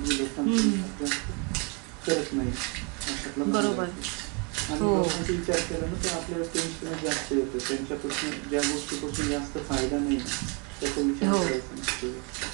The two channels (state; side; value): quieter; left; 33.3 dB